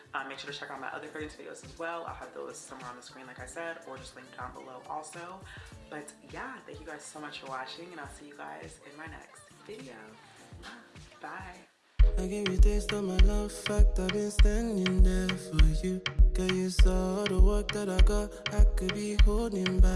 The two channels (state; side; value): identical; both; correlation 1.00